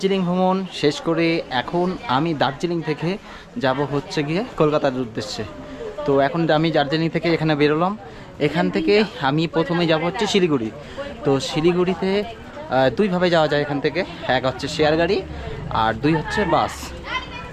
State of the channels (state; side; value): identical; both; correlation 1.00